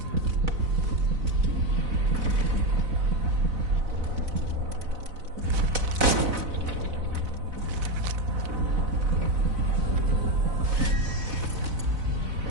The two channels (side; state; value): left; late; 4.0 ms